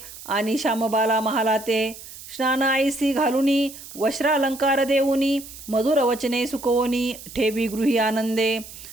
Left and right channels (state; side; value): noise; right; hiss, 15 dB below the sound